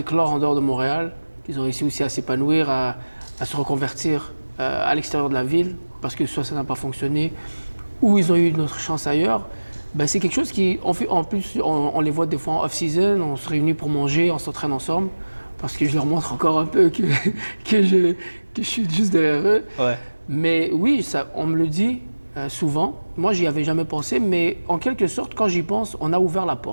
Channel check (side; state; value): both; inverted; correlation -1.00